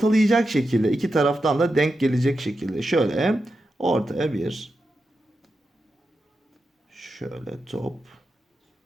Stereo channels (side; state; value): both; normal; correlation 0.88